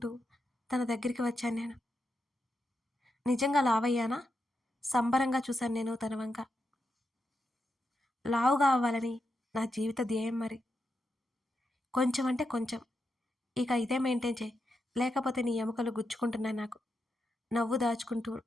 తన దగ్గరికి వచ్చాను నేను. నిజంగా లావయ్యానా? సంబరంగా చూశాను నేను తన వంక. లావుగా అవ్వాలని నా జీవిత ధ్యేయం మరి. కొంచెం అంటే కొంచెం. ఇక ఇదే మెయింటైన్ చేయి, లేకపోతే నీ ఎముకలు గుచ్చుకుంటున్నాయి నాకు నవ్వు దాచుకుంటూ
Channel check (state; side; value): normal; both; correlation 0.86